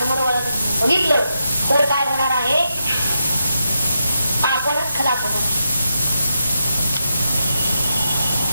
बघितलं तर काय होणार आहे? आपणच खलास होणार.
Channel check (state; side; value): inverted; both; correlation -0.85